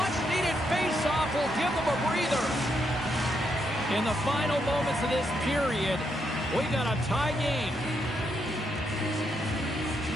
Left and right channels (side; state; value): both; normal; correlation 0.79